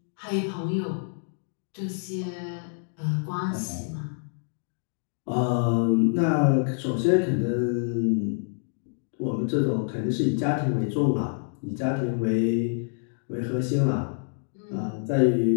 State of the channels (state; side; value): silent; right; digital silence